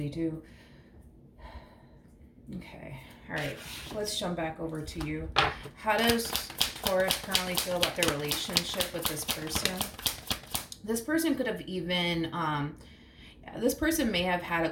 too. Okay. All right. Let's jump back over to you. How does Taurus currently feel about their relationship with this person? This person could have even, this person may have had a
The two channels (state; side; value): identical; both; correlation 1.00